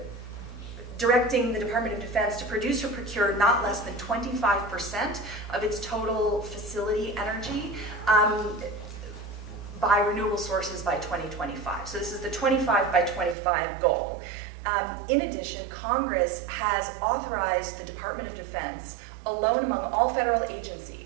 directing the Department of Defense to produce or procure not less than 25% of its total facility energy by renewable sources by 2025. So this is the 25 by 25 goal. In addition, Congress has authorized the Department of Defense, alone among all federal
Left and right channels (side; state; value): left; drops out; at 13.4 s